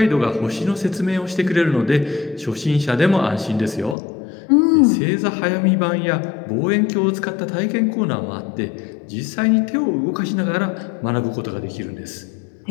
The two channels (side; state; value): right; drops out; at 4.0 s